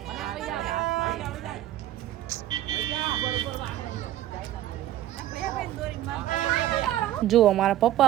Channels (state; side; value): quieter; left; 13.3 dB